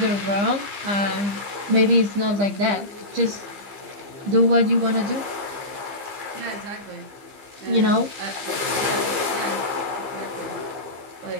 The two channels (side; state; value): left; late; 15 ms